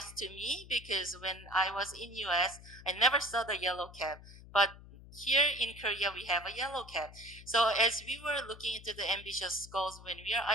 to me, because when I was in US, I never saw the yellow cap. But here in Korea, we have a yellow cap. So as we were looking into the ambitious goals, when we are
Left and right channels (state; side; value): noise; left; hum, 18 dB below the sound